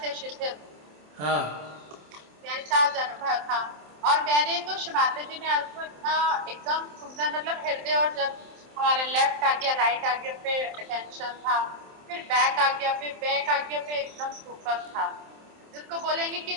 शिथिल, हाँ। वैसा आज अनुभव था। और मैंने तो शिमाता जी ने आज को इतना एकदम सुंदर मतलब हृदय, और जब हमारा लेफ्ट आ गया राइट आ गया पे अटेंशन था, फिर बैक आ गया, फिर बैक आ गया पे एकदम सुपर था, जिसको बोलेंगे कि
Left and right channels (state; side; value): late; left; 27 ms